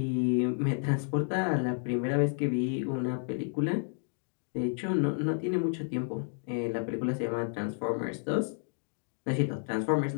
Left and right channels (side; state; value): right; silent; 57 dB below the other